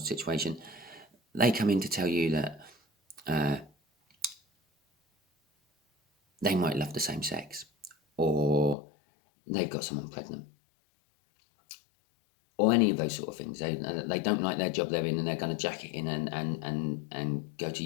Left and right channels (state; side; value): drops out; right; at 8.8 s